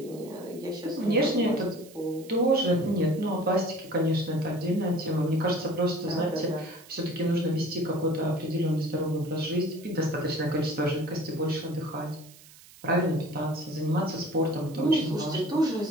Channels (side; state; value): right; noise; hiss, 22 dB below the sound